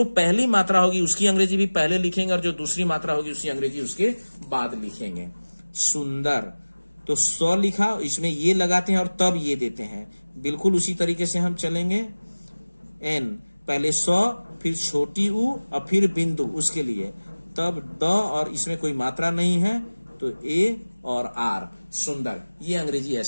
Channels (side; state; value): both; inverted; correlation -1.00